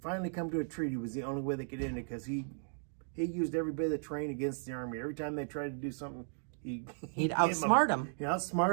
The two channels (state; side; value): silent; left; digital silence